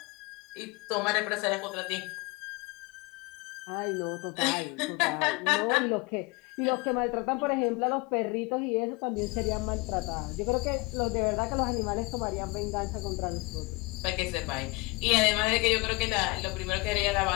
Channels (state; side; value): quieter; right; 25.8 dB